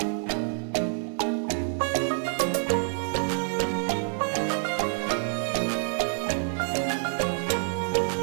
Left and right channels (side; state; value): left; silent; 60 dB below the other